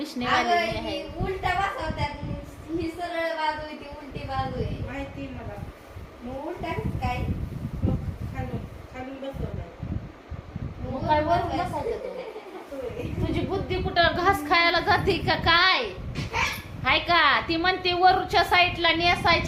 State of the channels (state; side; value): identical; both; correlation 1.00